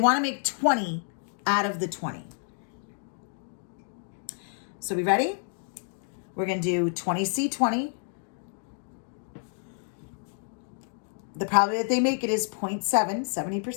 to make 20 out of the 20. So we ready? We're going to do 20C20. The probability that they make it is 0.7,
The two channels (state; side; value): silent; right; 59 dB below the other